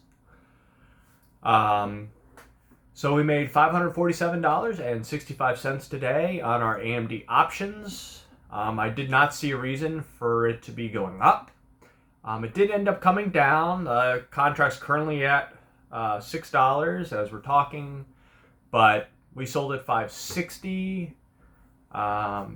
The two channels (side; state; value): both; identical; correlation 1.00